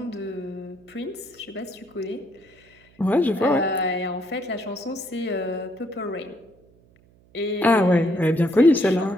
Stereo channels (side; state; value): right; noise; hum, 30 dB below the sound